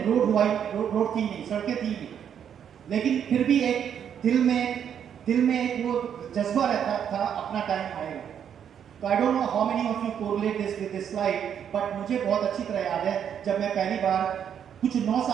थी नहीं, सड़कें थी नहीं। लेकिन फिर भी एक दिल में एक वो जज्बा रहता था, अपना टाइम आएगा। तो I don't know how many of you correlate this with this slide, but मुझे बहुत अच्छी तरह याद है जब मैं पहली बार कुछ 9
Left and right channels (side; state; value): left; quieter; 8.6 dB